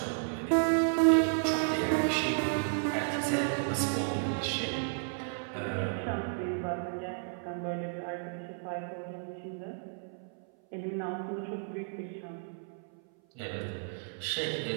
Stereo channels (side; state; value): left; silent; 56 dB below the other